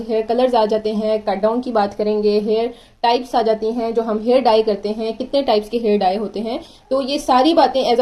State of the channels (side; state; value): both; identical; correlation 1.00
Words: हेयर कलर्स आ जाते हैं, कट डाउन की बात करेंगे, हेयर टाइप्स आ जाती हैं, जो हम हेयर डाई करते हैं, कितने टाइप्स के हेयर डाई होते हैं। तो ये सारी बातें as